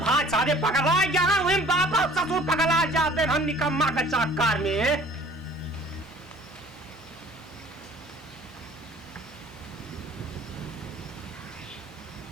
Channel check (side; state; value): both; normal; correlation 0.51